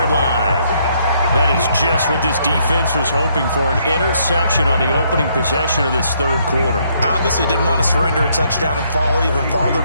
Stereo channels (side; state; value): both; inverted; correlation -0.70